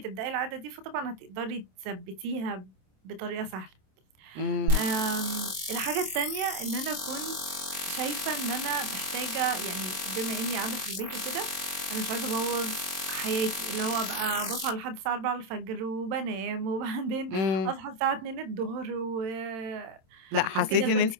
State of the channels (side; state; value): left; late; 27 ms